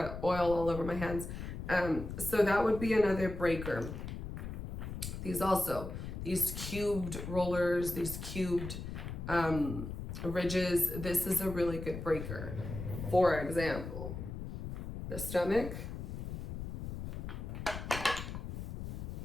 oil all over my hands. So that would be another breaker. These cubed rollers, these cubed ridges, this is a really good breaker. For example, the stomach.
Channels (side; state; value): left; noise; rumble, 6 dB below the sound